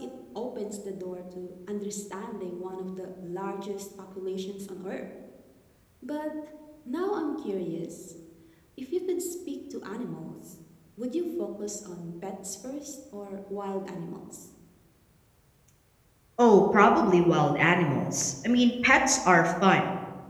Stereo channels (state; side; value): identical; both; correlation 1.00